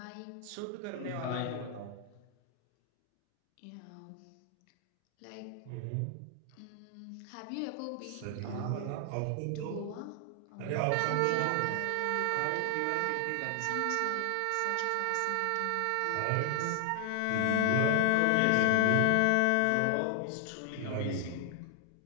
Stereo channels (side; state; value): both; different; correlation 0.00